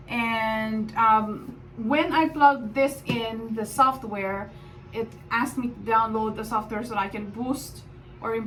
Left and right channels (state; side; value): identical; both; correlation 1.00